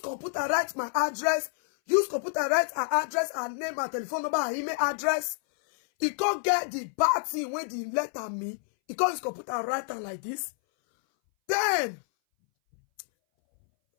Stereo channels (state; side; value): silent; right; 59 dB below the other